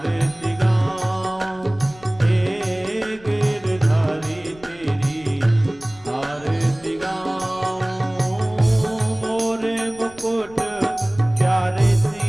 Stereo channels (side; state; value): left; noise; rumble, 23 dB below the sound